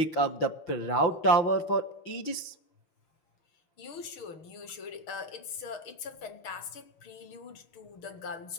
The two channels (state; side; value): late; right; 6.4 ms